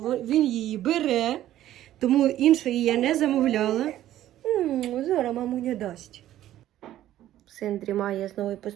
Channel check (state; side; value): quieter; left; 13.1 dB